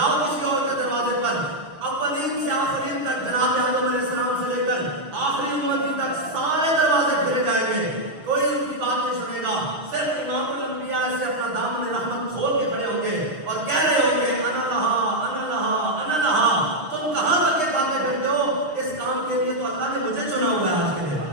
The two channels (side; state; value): left; late; 6.4 ms